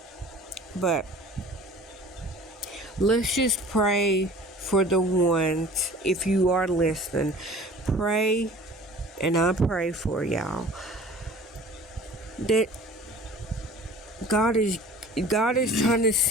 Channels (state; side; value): normal; both; correlation 0.45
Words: But let's just pray for the ones, if you are listening, pray, and I pray for y'all, that God is trying to